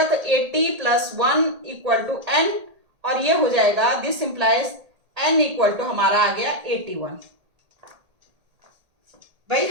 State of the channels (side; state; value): left; late; 1.8 ms